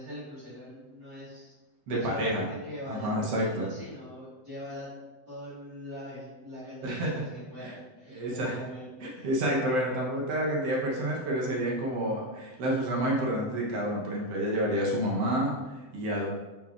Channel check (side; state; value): left; late; 7.8 ms